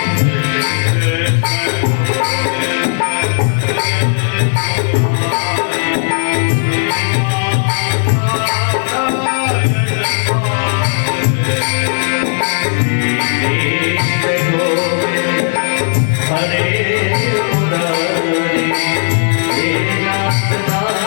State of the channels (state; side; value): silent; right; digital silence